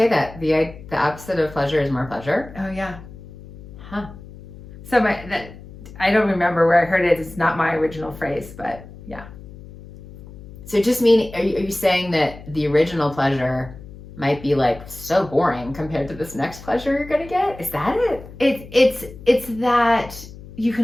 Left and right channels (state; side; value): noise; left; hum, 17 dB below the sound